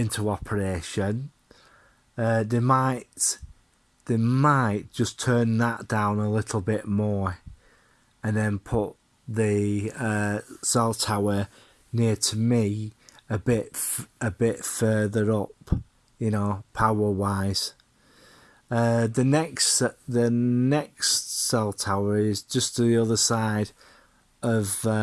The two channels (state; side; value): identical; both; correlation 1.00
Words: operation, they might just turn that down a little bit more, and then put the cell tower near to me a bit further up, power wise. The next cell tower is just to the other side of